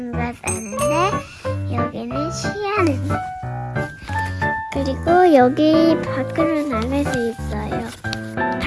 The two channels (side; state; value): both; identical; correlation 1.00